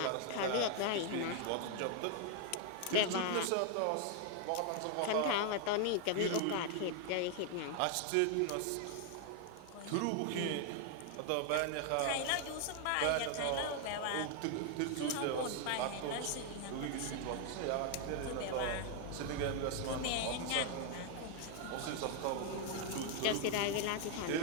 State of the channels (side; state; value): both; different; correlation 0.00